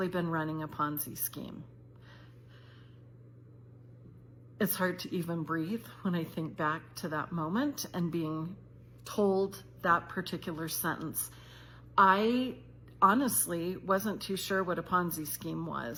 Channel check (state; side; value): identical; both; correlation 1.00